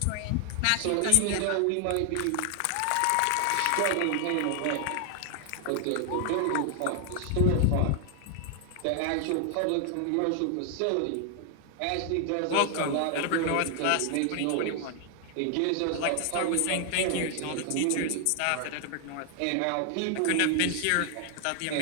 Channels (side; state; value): both; different; correlation 0.00